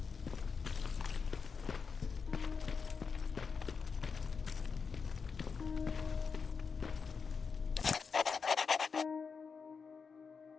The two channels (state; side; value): quieter; right; 5.5 dB